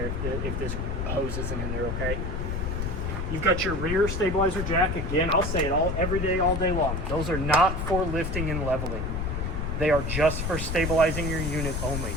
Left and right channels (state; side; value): noise; left; rumble, 2 dB below the sound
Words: if this hose isn't in there, okay? You've got your rear stabilizer jack. Again, I'll say it every day, all day long. Those are not for lifting and leveling. They are just for stabilizing your unit only.